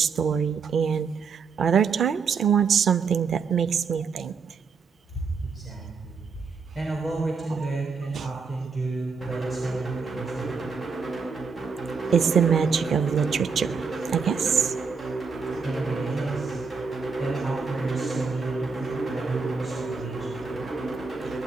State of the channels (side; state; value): left; quieter; 5.3 dB